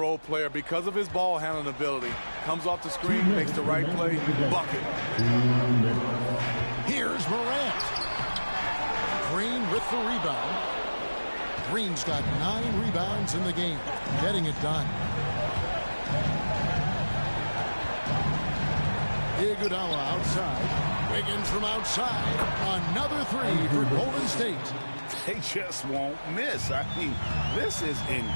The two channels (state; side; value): inverted; both; correlation -1.00